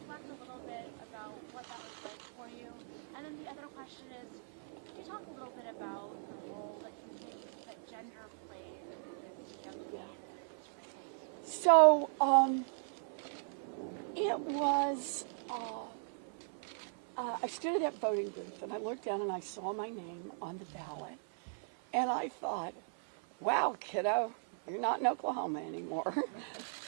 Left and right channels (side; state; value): left; silent; 52 dB below the other